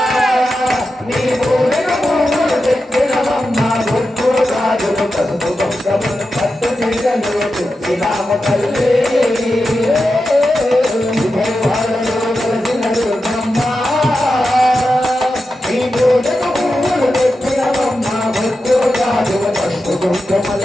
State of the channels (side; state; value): both; normal; correlation 0.90